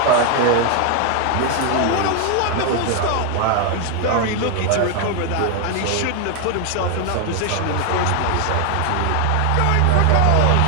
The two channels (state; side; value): different; both; correlation 0.01